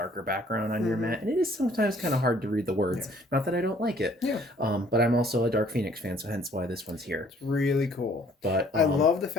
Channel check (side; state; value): both; normal; correlation 0.59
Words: background on your mat, and it is sometimes kind of hard to read the words. Yeah. Not that I don't like it. Yeah. But I'm also a Dark Phoenix fan, so hence why this one's here. It's really cool. But I love the